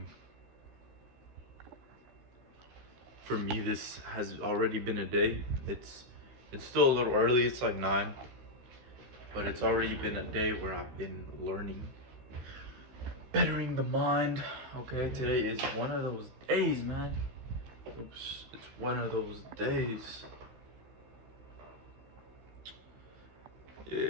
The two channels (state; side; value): late; left; 15 ms